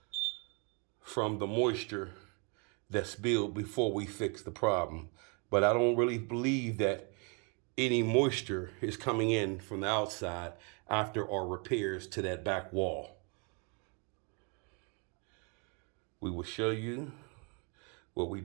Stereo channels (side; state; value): left; quieter; 34.9 dB